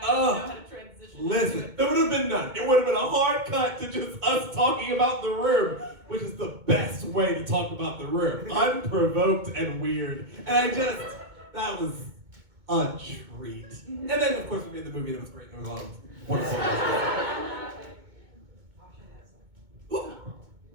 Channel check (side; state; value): left; late; 2.2 ms